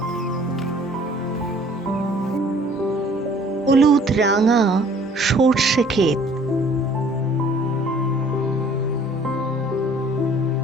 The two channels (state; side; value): normal; both; correlation 0.55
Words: হলুদ রাঙা সর্ষে ক্ষেত,